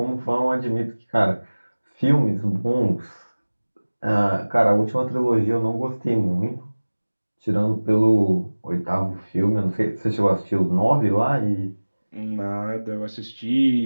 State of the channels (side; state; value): both; inverted; correlation -1.00